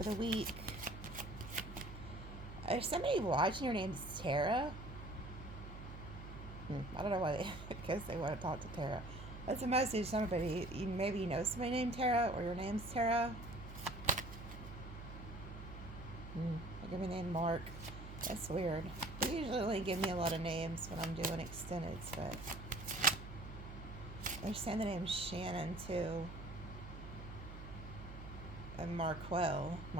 the week? Is somebody watching? Your name's Tara? I don't know why I guess they want to talk to Tara. That's a message. Somebody, maybe you know somebody named Tara, or your name's Tara. They give me the name Mark. That's weird. They usually only give me a lot of names when I'm doing extendeds, but they're saying the name Shannon too. And Marquell.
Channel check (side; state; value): right; noise; hum, 11 dB below the sound